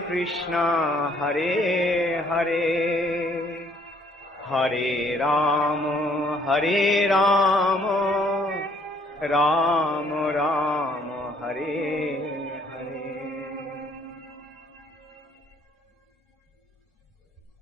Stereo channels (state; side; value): normal; both; correlation 0.64